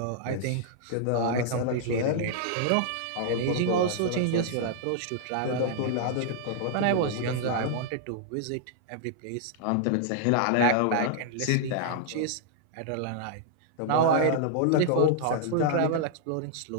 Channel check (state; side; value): different; both; correlation -0.01